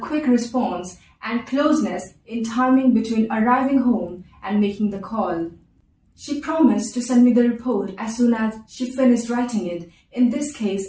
response and closeness in timing between arriving home and making the call. She promised to send me the report as soon as she finished writing it. In this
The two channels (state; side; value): identical; both; correlation 1.00